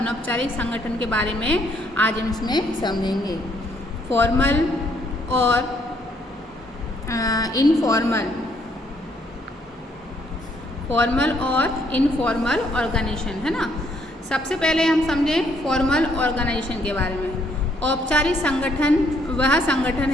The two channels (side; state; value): both; normal; correlation 0.68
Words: संगठन के बारे में आज हम इसमें समझेंगे। फॉर्मल और इनफॉर्मल, फॉर्मल और इनफॉर्मल ऑर्गेनाइजेशन है ना। सबसे पहले हम समझें फॉर्मल ऑर्गेनाइजेशन के बारे में। औपचारिक संगठन वह संगठन